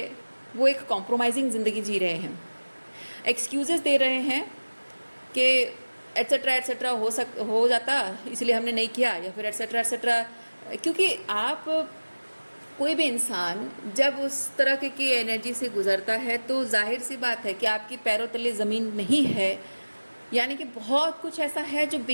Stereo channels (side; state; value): both; inverted; correlation -1.00